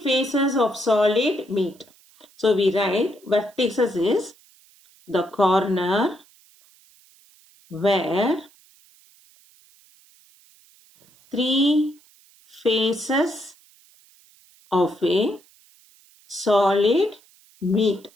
faces of solid meet. So we write vertices is the corner where three faces of a solid meet.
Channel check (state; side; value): noise; right; hiss, 29 dB below the sound